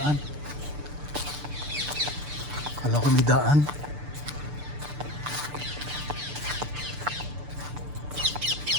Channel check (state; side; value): late; left; 6.8 ms